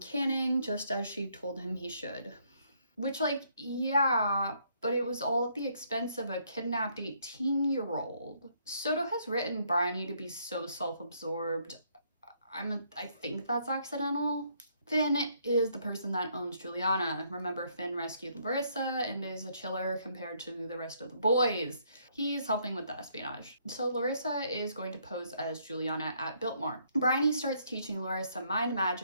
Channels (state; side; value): inverted; both; correlation -0.70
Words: just as she told him he should. Which, like, yeah, but it was all at the expense of a kidnapped 18-year-old. Soto has written Bryony to be so self-absorbed. I think that's accidental. Finn is the person that owns Juliana. Remember, Finn rescued Larissa and is a chiller compared to the rest of the boys. He's helping with the espionage. So Larissa is going to pose as Juliana at Biltmore. Bryony starts teaching Larissa mind